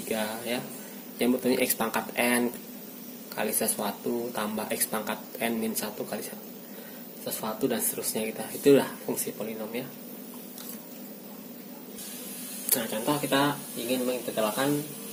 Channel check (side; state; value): both; identical; correlation 1.00